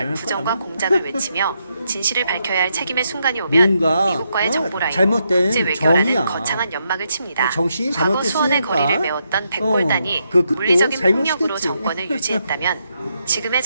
거야, 부정과 아마. 공작을 외치며 진실을 밝혀야 할 책임의 순간이 오면 뭔가, 미국과의 정보라인, 잘못된 국제 외교라는 정의야. 거창한 연막을 칩니다. 정신이 과거 수원의 잘못됐으니까. 거리를 메웠던 백골단이 그 끝도 물리적인 폭력으로 잘못이겠지. 정권을 유지했다면 지금의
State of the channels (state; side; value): inverted; both; correlation -0.80